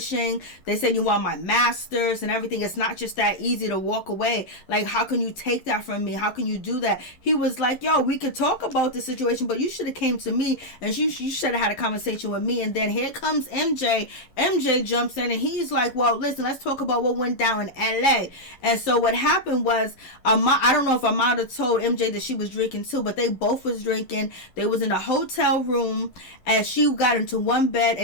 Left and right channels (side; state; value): right; late; 11 ms